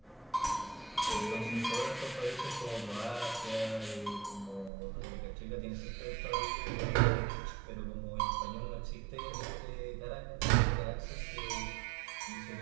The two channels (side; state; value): left; drops out; at 4.7 s